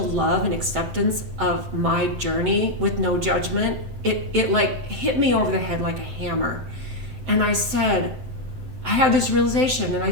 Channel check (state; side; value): late; left; 7.7 ms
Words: love and acceptance of my journey with no judgment, it like hit me over the head like a hammer. And I had this realization, and I